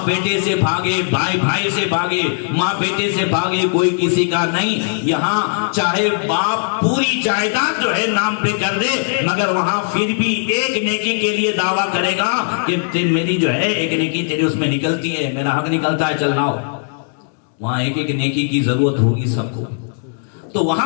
بیٹے سے بھاگے، بھائی بھائی سے بھاگے، ماں بیٹے سے بھاگے، کوئی کسی کا نہیں۔ یہاں چاہے باپ پوری جائیداد جو ہے نام پہ کر دے، مگر وہاں پھر بھی ایک نیکی کے لیے دعویٰ کرے گا کہ میری جو ہے ایک نیکی تیری اس میں نکلتی ہے، میرا حق نکلتا ہے، چل لاؤ۔ وہاں ایک ایک نیکی کی ضرورت ہوگی سب کو۔ تو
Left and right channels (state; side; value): silent; right; digital silence